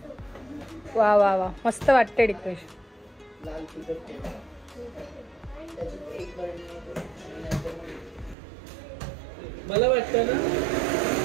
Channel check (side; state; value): left; drops out; at 8.3 s